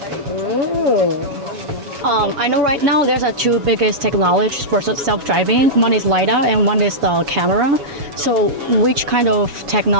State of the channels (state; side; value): late; left; 7.1 ms